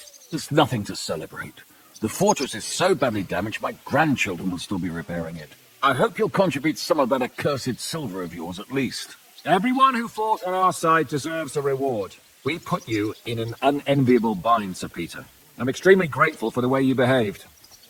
There's nothing to celebrate. The fortress is so badly damaged, my grandchildren will still be repairing it. I hope you'll contribute some of that accursed silver of yours at least. Everyone who fought on our side deserves a reward. We put you in an unenviable bind, Sir Peter. I'm extremely grateful for the way you behaved.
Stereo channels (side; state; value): both; identical; correlation 1.00